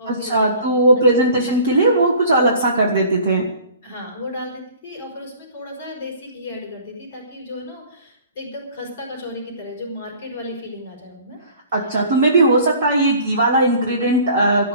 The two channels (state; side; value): inverted; both; correlation -0.49